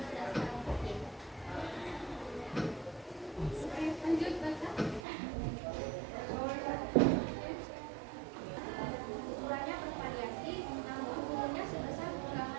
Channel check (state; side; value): drops out; left; at 5.0 s